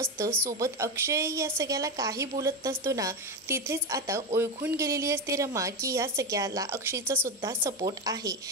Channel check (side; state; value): both; normal; correlation 0.15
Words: सोबत अक्षय या सगळ्याला काही बोलत नसतो ना, तिथेच आता ओळखून गेलेली असते रमा की या सगळ्याला अक्षयचा सुद्धा सपोर्ट आहे.